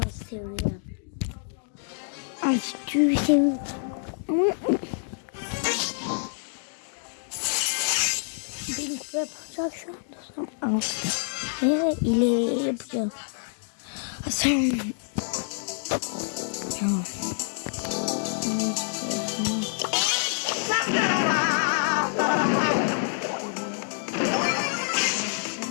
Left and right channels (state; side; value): silent; right; digital silence